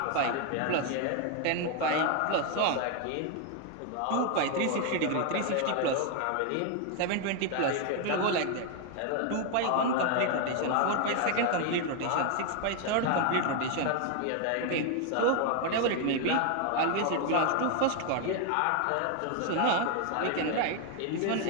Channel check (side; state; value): both; different; correlation 0.01